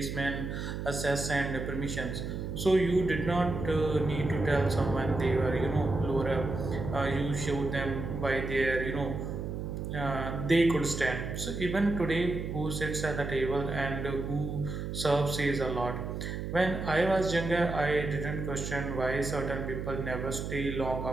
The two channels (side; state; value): right; noise; hum, 5 dB below the sound